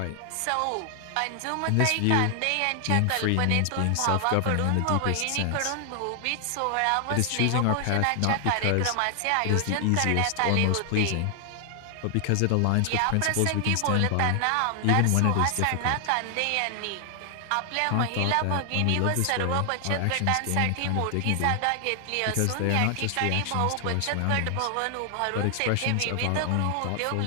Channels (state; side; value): different; both; correlation 0.00